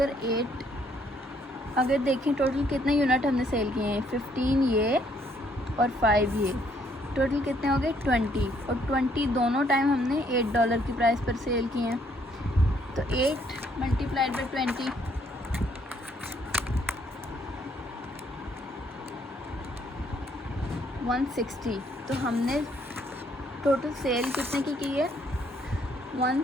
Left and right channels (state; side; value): normal; both; correlation 0.68